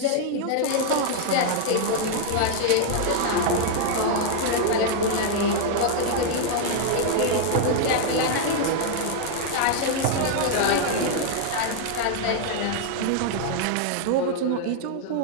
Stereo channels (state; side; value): different; both; correlation 0.00